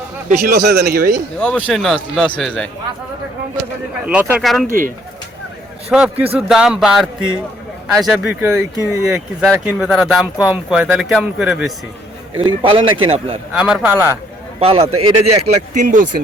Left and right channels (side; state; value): both; normal; correlation 0.64